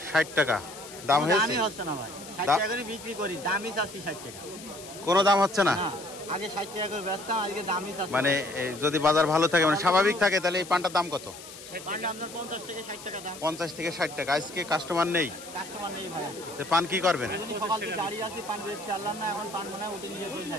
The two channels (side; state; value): left; noise; hiss, 15 dB below the sound